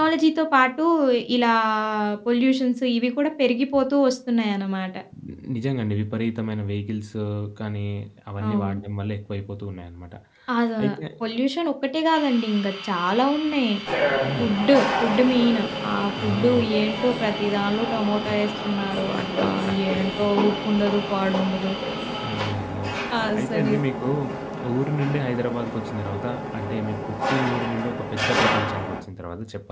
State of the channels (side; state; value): both; identical; correlation 1.00